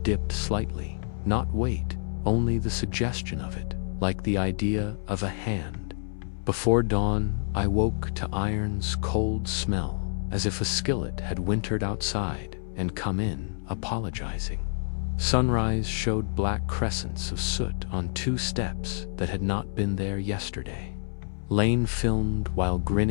dipped slightly. Not weight, only the suggestion of it, like the idea of a hand. Before dawn, I woke to iron's cold smell, as if a skillet had wintered outside and come in, apologizing. Sunrise showed black crescents of soot on 2 steps that had not been there yesterday. Lane filmed while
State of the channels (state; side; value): silent; right; 59 dB below the other